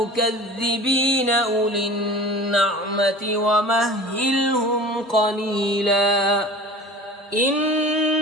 أولي النعمة ومهلهم قليلا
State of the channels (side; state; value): both; normal; correlation 0.39